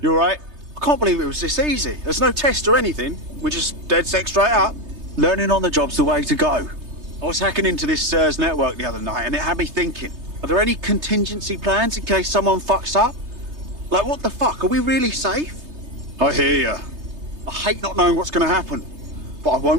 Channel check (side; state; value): left; late; 3.3 ms